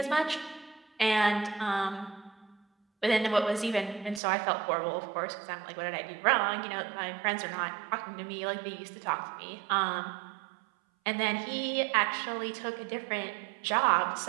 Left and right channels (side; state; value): left; drops out; at 4.2 s